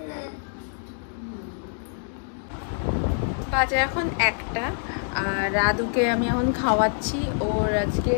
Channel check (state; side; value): silent; right; digital silence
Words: বাজে এখন 1টা, আর আদুকে আমি এখন খাওয়াচ্ছি। ওর